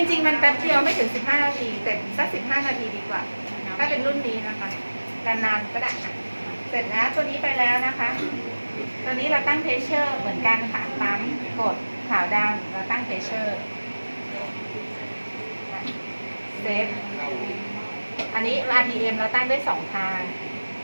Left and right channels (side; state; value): both; inverted; correlation -1.00